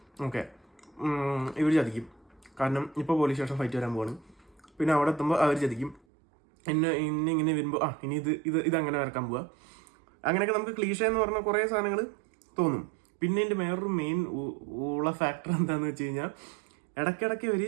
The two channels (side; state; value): left; drops out; at 6.0 s